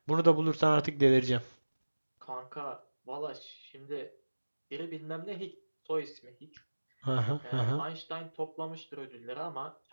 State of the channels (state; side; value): inverted; both; correlation -1.00